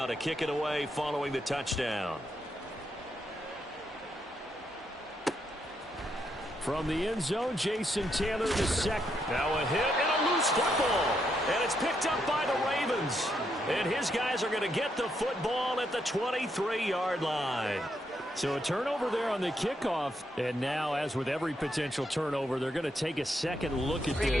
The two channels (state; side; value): normal; both; correlation 0.79